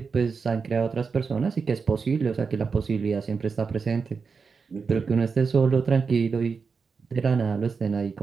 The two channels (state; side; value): quieter; left; 5.2 dB